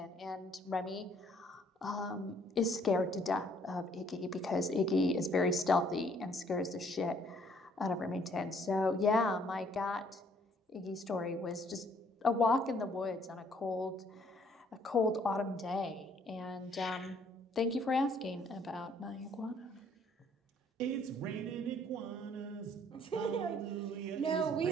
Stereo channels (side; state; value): both; normal; correlation 0.63